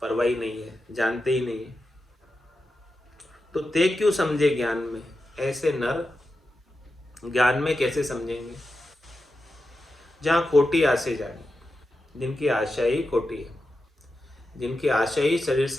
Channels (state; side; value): normal; both; correlation 0.90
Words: परवाह नहीं है, जानते ही नहीं है। तो ते क्यों समझे ज्ञान में, ऐसे नर ज्ञान में कैसे समझेंगे। जहाँ खोटी आशे जानी, जिनकी आशा ही खोटी है, जिनकी आशा ही शरीर